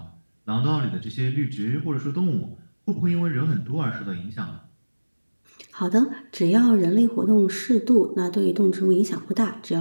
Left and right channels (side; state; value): both; inverted; correlation -1.00